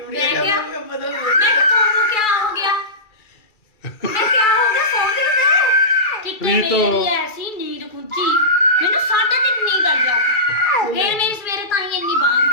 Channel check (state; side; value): late; right; 2.3 ms